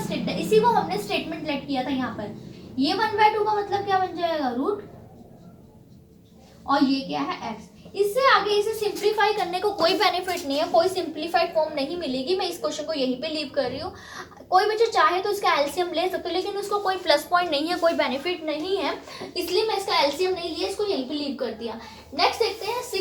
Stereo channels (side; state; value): both; identical; correlation 1.00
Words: स्टेटमेंट, इसी को हमने स्टेटमेंट लेट किया था यहाँ पर, ये 1/2 का मतलब क्या बन जाएगा रूट, और ये क्या है x। इससे आगे इसे सिंप्लीफाई करने को कोई बेनिफिट नहीं है, कोई सिंप्लीफाइड फॉर्म नहीं मिलेगी, मैं इस क्वेश्चन को यहीं पे लीव कर रही हूँ। कोई बच्चा चाहे तो इसका एलसीएम ले सकते हो, लेकिन उसको कोई प्लस पॉइंट नहीं है, कोई बेनिफिट नहीं है, इसलिए मैं इसका एलसीएम नहीं लिया, इसको यहीं पे लीव कर दिया। नेक्स्ट देखते हैं